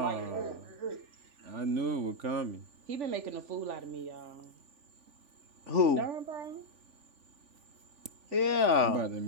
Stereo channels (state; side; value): late; left; 3.5 ms